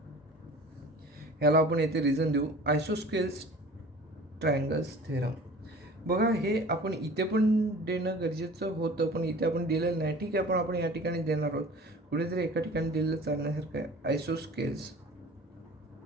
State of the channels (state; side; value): normal; both; correlation 0.44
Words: ह्याला आपण इथे रिझन देऊ आयसोस्केल्स ट्रायंगल्स थेरम. बघा, हे आपण इथे पण देणं गरजेचं होतं पण इथे आपण दिलेलं नाही. ठीक आहे, पण आपण या ठिकाणी देणार आहोत. कुठेतरी एका ठिकाणी दिलेलं चालण्यासारखं आहे. Isosceles